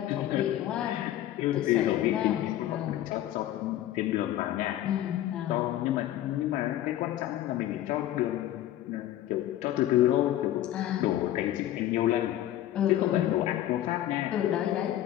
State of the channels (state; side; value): quieter; right; 13.1 dB